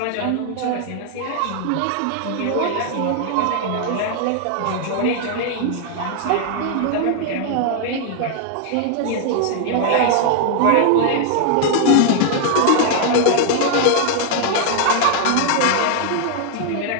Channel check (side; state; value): both; different; correlation 0.00